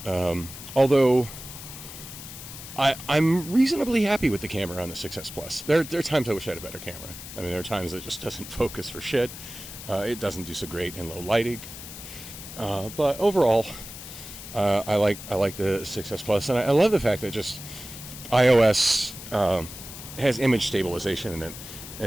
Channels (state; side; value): noise; left; hiss, 12 dB below the sound